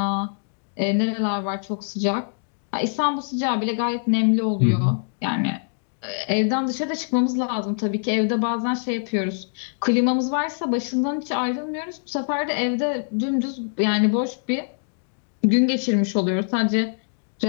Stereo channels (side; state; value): right; silent; digital silence